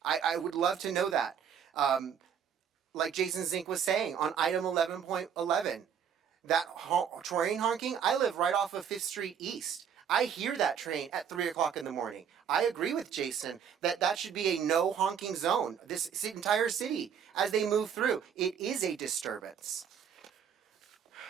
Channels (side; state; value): left; quieter; 7.9 dB